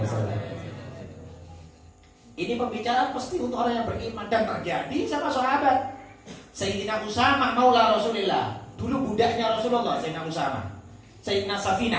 wasallam. Ini pembicaraan pasti untuk orang yang beriman dan terjadi sama sahabat. Sayyidina Usamah maula Rasulillah, dulu budaknya Rasulullah. Sayyidina Usamah, Sayyidina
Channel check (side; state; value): both; identical; correlation 1.00